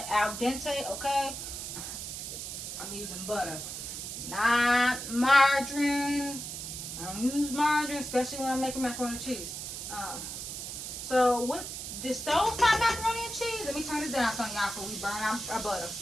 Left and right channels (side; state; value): right; noise; hiss, 7 dB below the sound